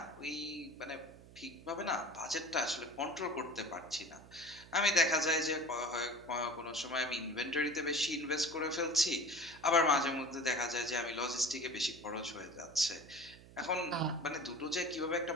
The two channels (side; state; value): right; noise; hum, 20 dB below the sound